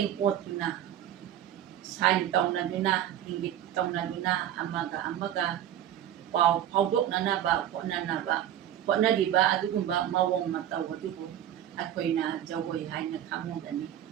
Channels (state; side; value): quieter; left; 11.2 dB